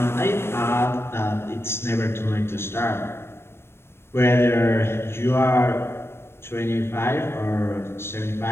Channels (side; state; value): right; late; 0.12 ms